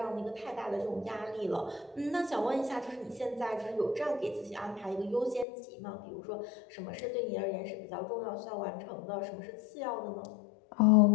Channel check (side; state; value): right; drops out; at 5.5 s